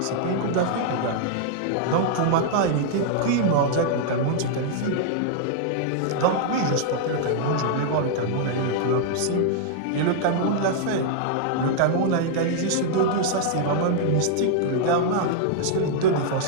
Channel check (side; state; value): both; different; correlation -0.01